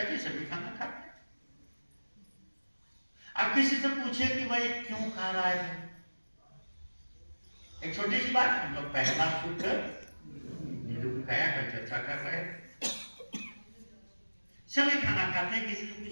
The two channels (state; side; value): inverted; both; correlation -1.00